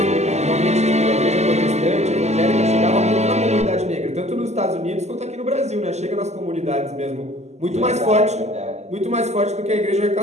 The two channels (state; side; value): late; left; 0.33 ms